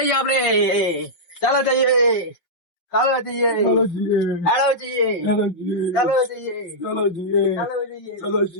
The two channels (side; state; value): right; late; 5.7 ms